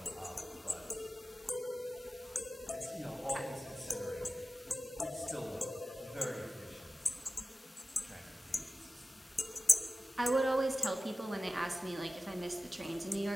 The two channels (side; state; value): both; normal; correlation 0.95